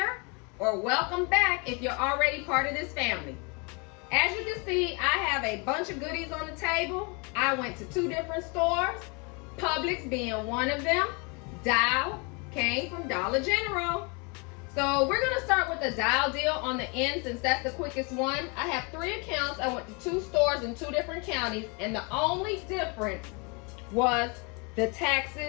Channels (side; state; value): right; quieter; 31.8 dB